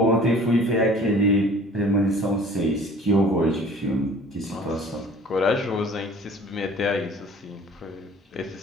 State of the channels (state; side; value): normal; both; correlation 0.49